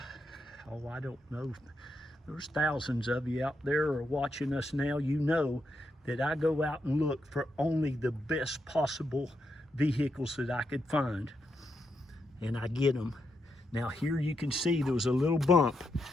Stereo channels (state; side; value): normal; both; correlation 0.83